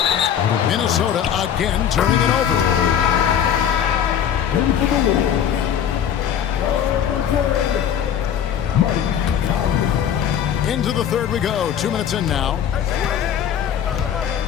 Minnesota again turning it over. Into the third we go. 2 minutes in now.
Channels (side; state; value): right; quieter; 9.1 dB